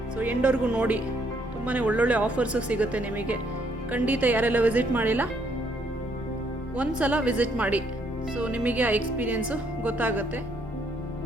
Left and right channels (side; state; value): both; normal; correlation 0.69